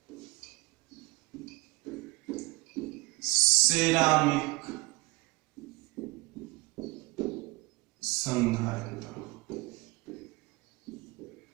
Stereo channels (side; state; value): left; quieter; 24.5 dB